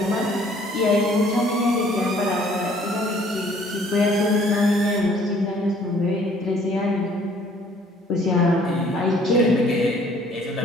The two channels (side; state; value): both; normal; correlation 0.58